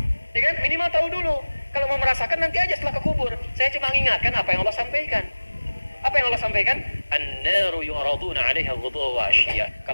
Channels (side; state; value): both; inverted; correlation -1.00